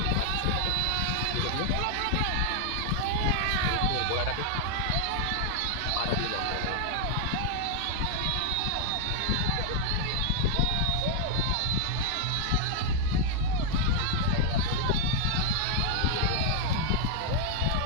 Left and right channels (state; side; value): different; both; correlation 0.00